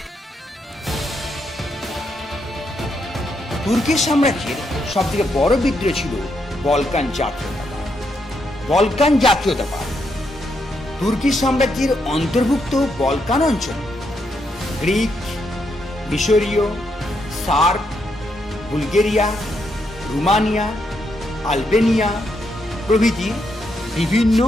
তুর্কি সাম্রাজ্যের সব থেকে বড় বিদ্রোহ ছিল বলকান জাতীয়তাবাদ। বলকান জাতীয়তাবাদ তুর্কি সাম্রাজ্যের অন্তর্ভুক্ত বলকান অঞ্চল গ্রিক, মিশরীয়, সার্ব, বুলগেরিয়া, রোমানিয়া, আলবেনিয়া প্রভৃতি বিভিন্ন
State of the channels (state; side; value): normal; both; correlation 0.79